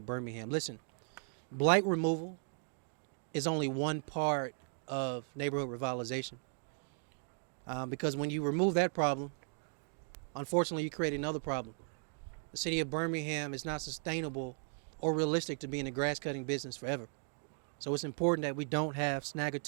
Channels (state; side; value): silent; left; 53 dB below the other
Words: Birmingham. Listen, blight removal is only one part of neighborhood revitalization. Because when you remove that problem, unfortunately, you create another problem. The city of Birmingham is not sustainable or realistic to be in the grass cutting business forever. So it's important that we don't have